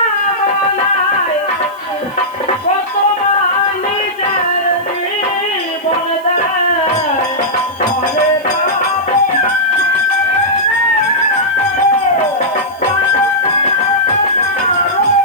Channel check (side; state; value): right; noise; hiss, 26 dB below the sound